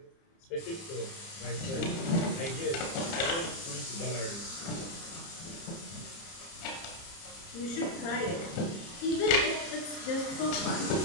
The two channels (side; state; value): right; late; 30 ms